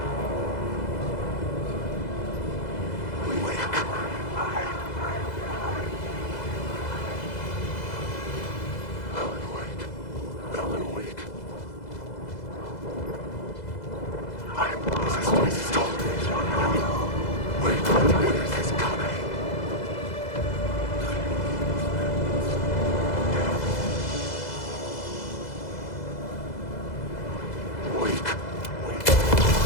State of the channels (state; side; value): late; right; 2.0 ms